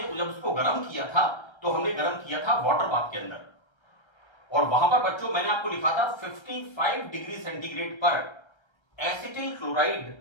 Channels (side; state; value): right; late; 1.3 ms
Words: जब उसको गर्म किया था तो हमने गर्म किया था वाटर बाथ के अंदर। और वहां पर बच्चों मैंने आपको लिखा था 55 डिग्री सेंटीग्रेड पर एसिटिल क्लोराइड